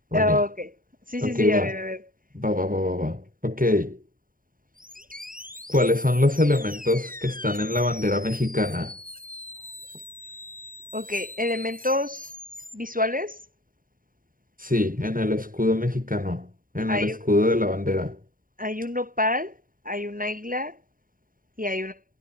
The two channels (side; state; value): left; late; 0.41 ms